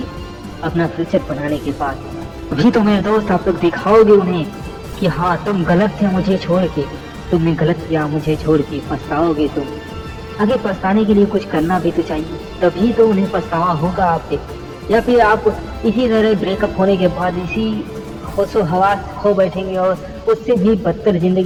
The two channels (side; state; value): both; identical; correlation 1.00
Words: अपना फ्यूचर बनाने के बाद। अभी तो मेरे दोस्त आप लोग दिखाओगे उन्हें कि हाँ तुम गलत थे मुझे छोड़ के, तुमने गलत किया मुझे छोड़ के, पछताओगे तुम। आगे पछताने के लिए कुछ करना भी तो चाहिए, तभी तो उन्हें पछतावा होगा आपसे। या फिर आप इसी तरह ब्रेकअप होने के बाद इसी होशो हवास खो बैठेंगे और उससे भी बदतर